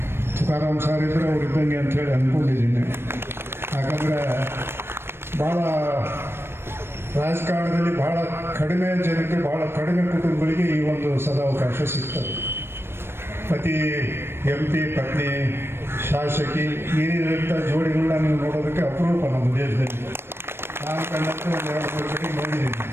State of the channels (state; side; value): late; left; 0.12 ms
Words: ತುಕಾರಾಂ ಸಾರ್ ಇದ್ದರೆ ಅವ್ರು ಇದ್ದಂಗೆ ಅಂಥೇಳಿ ಅಂದ್ಕೊಂಡಿದ್ದೀನಿ. ಯಾಕಂದರೆ ಭಾಳ ರಾಜಕಾರಣದಲ್ಲಿ ಭಾಳ ಕಡಿಮೆ ಜನಕ್ಕೆ, ಭಾಳ ಕಡಿಮೆ ಕುಟುಂಬಗಳಿಗೆ ಈ ಒಂದು ಸದಾವಕಾಶ ಸಿಗ್ತದೆ. ಪತಿ MP, ಪತ್ನಿ ಶಾಸಕಿ, ಈ ರೀತಿಯ ಜೋಡಿಗಳನ್ನ ನೀವು ನೋಡೋದಕ್ಕೆ ಅಪರೂಪ ನಮ್ಮ ದೇಶದಲ್ಲಿ. ನಾನು ಕಂಡಂತೆ ಒಂದು 2-3 ಕಡೆ ನೋಡಿದ್ದೀನಿ.